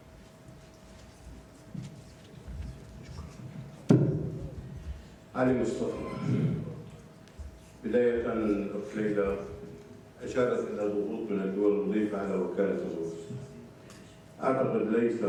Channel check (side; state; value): both; identical; correlation 1.00